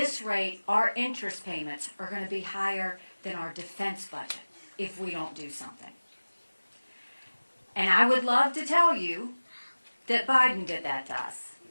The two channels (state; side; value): inverted; both; correlation -1.00